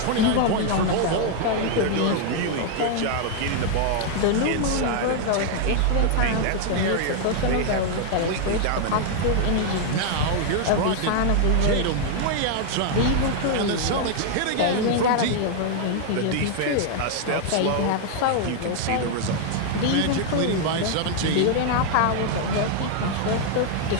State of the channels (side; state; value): both; different; correlation 0.00